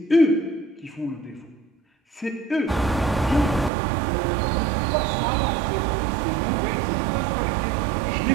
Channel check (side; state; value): left; drops out; at 3.7 s